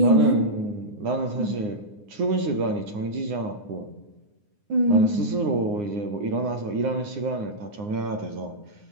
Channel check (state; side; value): late; left; 9.7 ms